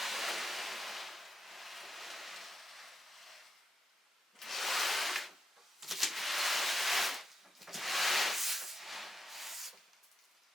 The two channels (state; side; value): normal; both; correlation 0.83